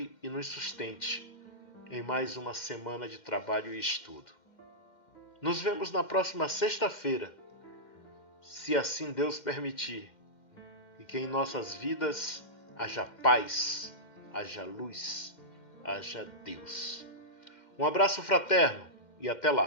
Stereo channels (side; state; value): right; late; 2.1 ms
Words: e nos sustente em mais uma semana de trabalho e estudo. Nos vemos na próxima sexta-feira, se assim Deus permitir, e que em nossas vidas haja paz, haja luz, haja Deus. Um abraço fraterno e até